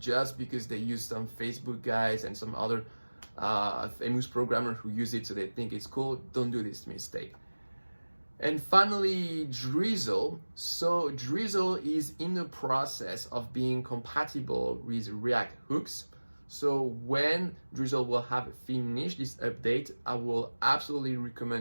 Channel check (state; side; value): inverted; both; correlation -1.00